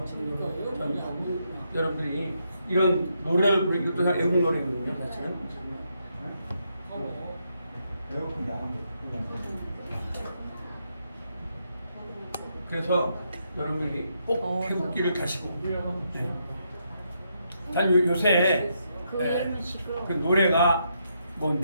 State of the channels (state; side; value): inverted; both; correlation -0.79